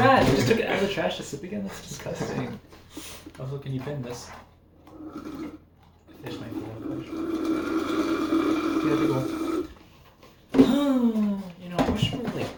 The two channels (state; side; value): identical; both; correlation 1.00